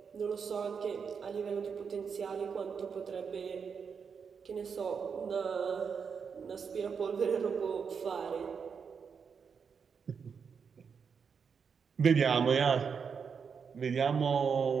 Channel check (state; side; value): quieter; left; 6.2 dB